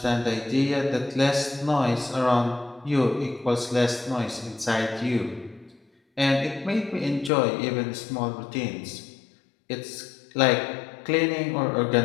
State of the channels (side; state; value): right; drops out; at 7.3 s